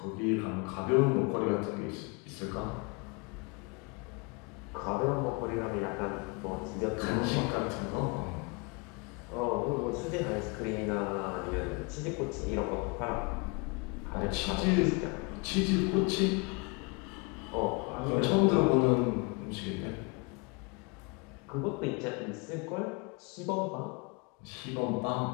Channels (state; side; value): quieter; right; 30.3 dB